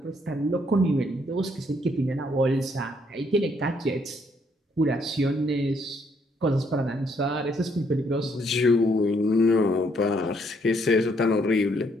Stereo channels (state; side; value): normal; both; correlation 0.70